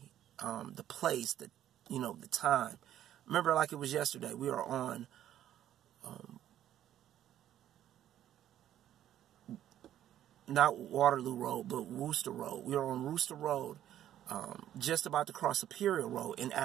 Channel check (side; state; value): left; quieter; 11.7 dB